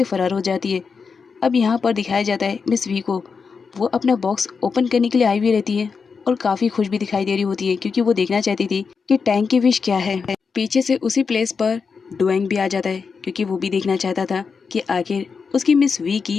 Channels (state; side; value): quieter; right; 5.4 dB